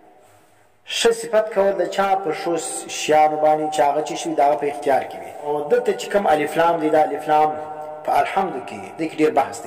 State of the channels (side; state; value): both; identical; correlation 1.00